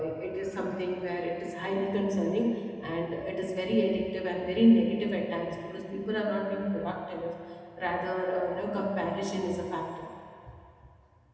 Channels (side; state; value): both; identical; correlation 1.00